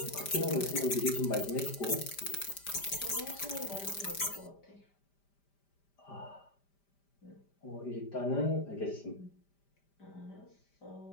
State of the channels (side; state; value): right; late; 5.1 ms